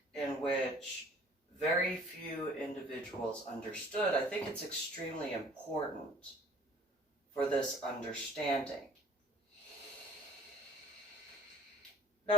in which very few individuals understood, I think it's extremely important for this understanding.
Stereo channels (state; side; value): normal; both; correlation 0.53